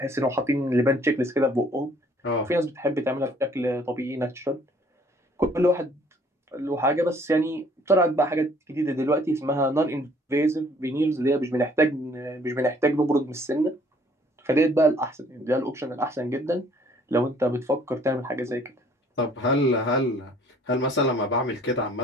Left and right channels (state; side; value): normal; both; correlation 0.59